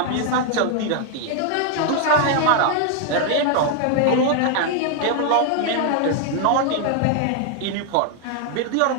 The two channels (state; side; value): different; both; correlation 0.00